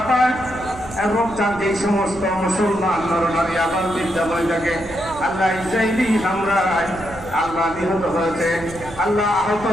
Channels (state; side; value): noise; right; rumble, 16 dB below the sound